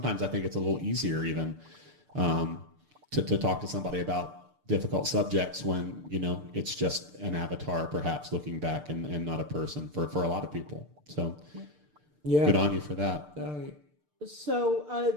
I think it's a little easier even to talk to somebody about difficult subjects when, you know, it's just an avatar perhaps looking back and not a person for a lot of people. So good on you for that. So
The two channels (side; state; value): left; late; 6.7 ms